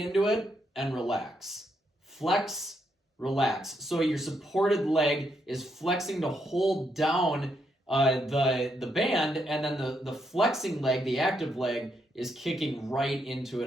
it and relax. Flex, relax. So your supported leg is flexing to hold down the band, and then the flexing leg, the active leg, is kicking right into it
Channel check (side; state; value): both; normal; correlation 0.78